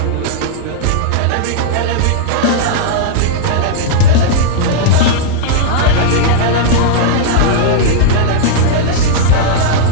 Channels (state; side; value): different; both; correlation -0.01